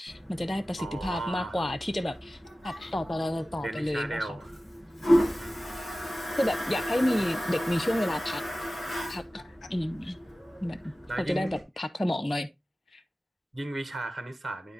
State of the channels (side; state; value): both; normal; correlation 0.96